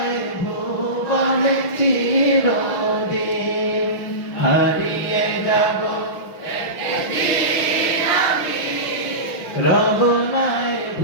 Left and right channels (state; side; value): late; right; 6.0 ms